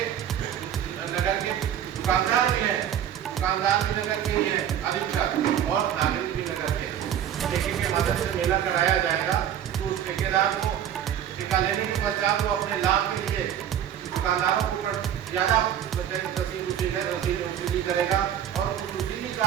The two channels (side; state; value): left; quieter; 10.0 dB